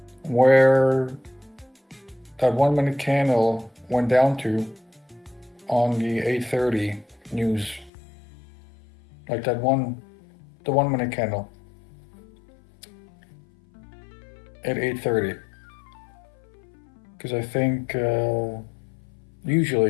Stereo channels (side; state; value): right; drops out; at 7.9 s